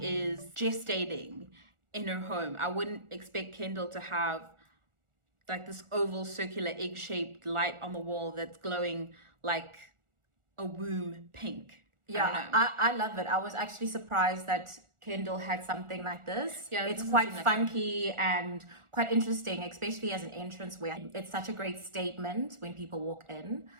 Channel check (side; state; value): left; late; 1.4 ms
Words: is gestating in her home. I wouldn't expect Kendall to have like this oval circular egg-shaped light on the wall that's glowing like a womb pink. Yeah, I love it. I was actually surprised that Kendall had something like this. Yeah, it's quite funky and quite interesting, especially as an entrance where it's such a great statement when people walk in.